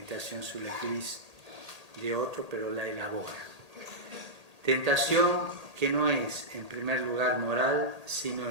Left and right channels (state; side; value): late; left; 1.8 ms